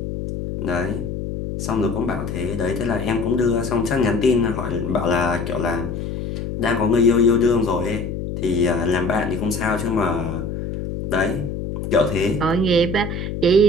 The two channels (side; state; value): left; noise; hum, 5 dB below the sound